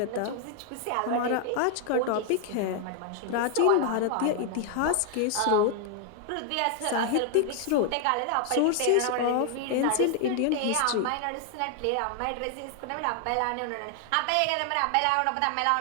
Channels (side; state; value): both; different; correlation 0.00